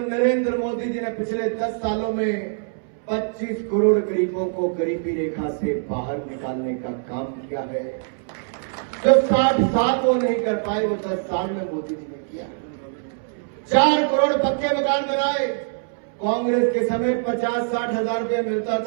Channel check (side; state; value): left; silent; 63 dB below the other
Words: नरेंद्र मोदी जी ने पिछले 10 सालों में 25 करोड़ गरीबों को गरीबी रेखा से बाहर निकालने का काम किया है। जो 60 साल वो नहीं कर पाए, वो 10 साल में मोदी जी ने किया। 4 करोड़ पक्के मकान बनाए। कांग्रेस के समय 50-60 हजार रुपया मिलता